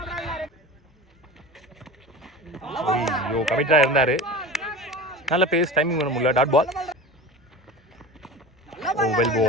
ஐயோ கமிட்டடாக இருந்தார். நல்ல பேஸ், டைமிங் பண்ண முடியல. Dot ball. Oh well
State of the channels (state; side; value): normal; both; correlation 0.32